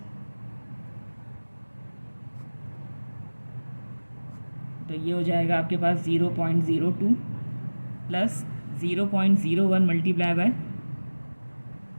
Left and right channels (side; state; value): both; inverted; correlation -1.00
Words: तो ये हो जाएगा आपके पास 0.02 प्लस 0.01 मल्टीप्लाई बाय,